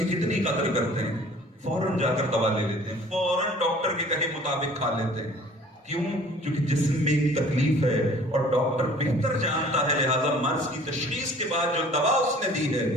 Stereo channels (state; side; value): normal; both; correlation 0.50